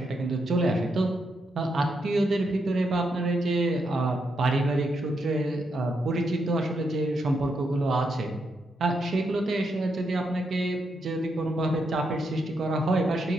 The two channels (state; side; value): normal; both; correlation 0.81